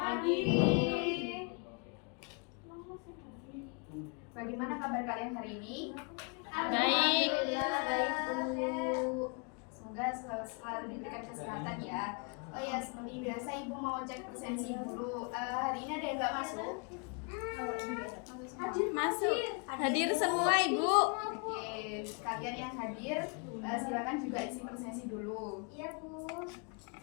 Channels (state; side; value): quieter; right; 36.3 dB